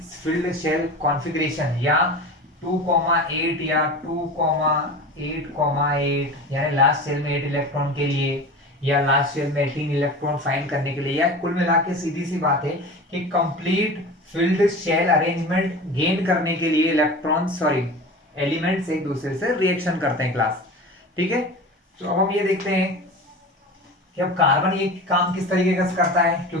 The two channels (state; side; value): normal; both; correlation 0.33